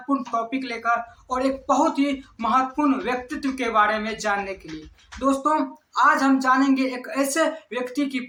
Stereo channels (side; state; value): both; identical; correlation 1.00